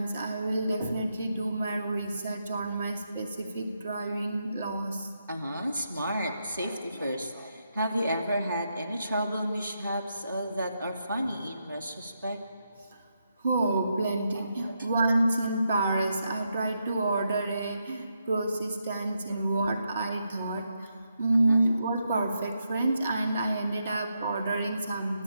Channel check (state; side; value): inverted; both; correlation -0.82